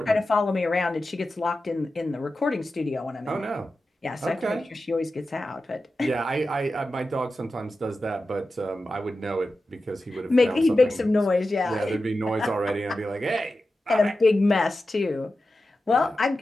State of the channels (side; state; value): both; normal; correlation 0.92